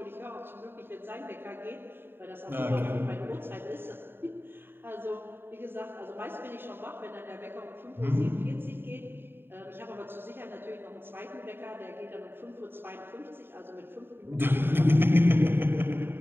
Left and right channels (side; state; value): left; late; 0.10 ms